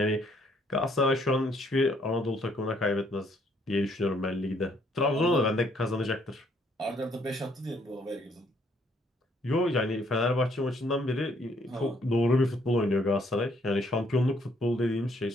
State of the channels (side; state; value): both; normal; correlation 0.67